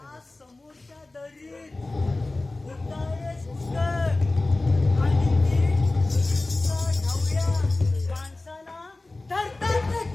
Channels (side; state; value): right; quieter; 3.0 dB